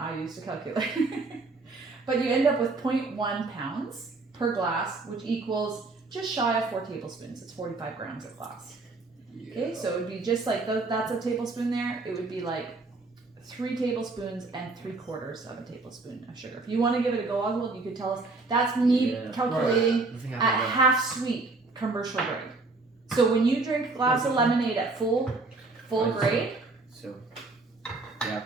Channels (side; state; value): left; quieter; 3.6 dB